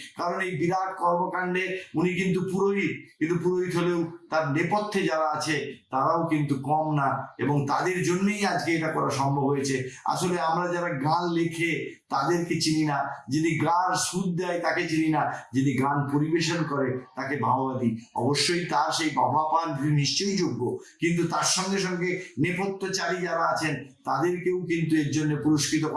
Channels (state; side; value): identical; both; correlation 1.00